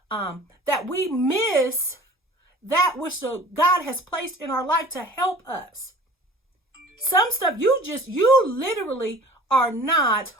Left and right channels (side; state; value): both; normal; correlation 0.44